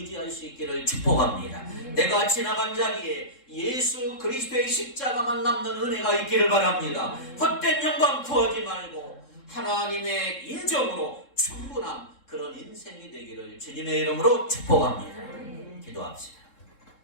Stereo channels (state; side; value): late; right; 3.7 ms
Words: 수 있기를 축복합니다. 내가 지나간 자리에 예수 그리스도의 십자가만 남는 은혜가 있기를 바랍니다. 헛된 영광 구하지 말고 하나님의 인정으로 충분한 그런 인생이 되기를 주님의 이름으로 축복합니다. 기도합시다.